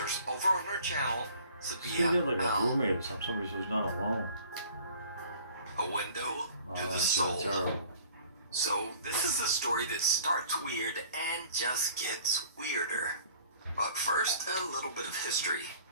over on her channel, She Sabia did like a L. roommate or something. Somebody who's not alone. A window to the That's soul. terrible. So this is a story that starts weird and just gets weirder. But first, a little bit of history.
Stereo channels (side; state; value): both; inverted; correlation -0.51